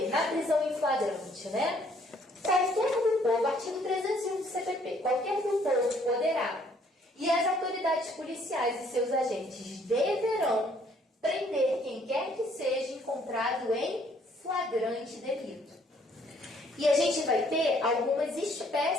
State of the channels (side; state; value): both; normal; correlation 0.64